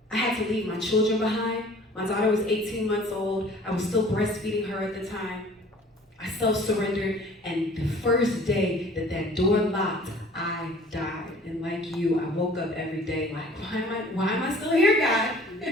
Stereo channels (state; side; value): normal; both; correlation 0.50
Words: I had to leave my children behind. My daughter was 18 months old. I was still breastfeeding her at the time. I self-surrendered, and the first day that that door locked, I died. And like you, I woke up every day like, why am I still here, God?